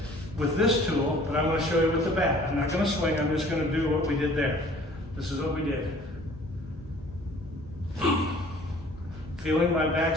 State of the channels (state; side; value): normal; both; correlation 0.52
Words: with this tool, but I'm going to show you with the bat. I'm not going to swing, I'm just going to do what we did there. This is what we did. Feeling my back